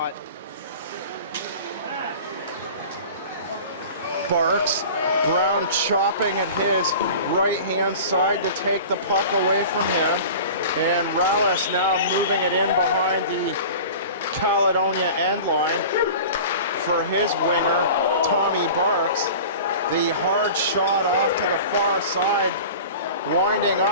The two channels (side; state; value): both; inverted; correlation -0.38